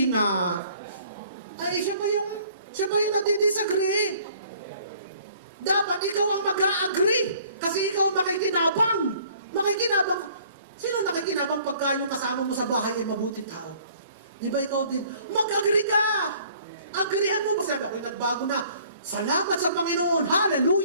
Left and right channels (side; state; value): both; inverted; correlation -0.56